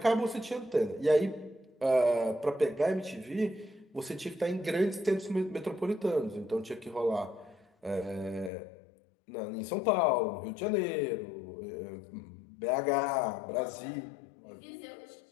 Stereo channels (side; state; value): right; drops out; at 8.5 s